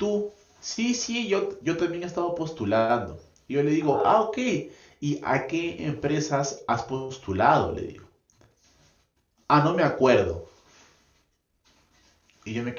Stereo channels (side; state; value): both; identical; correlation 1.00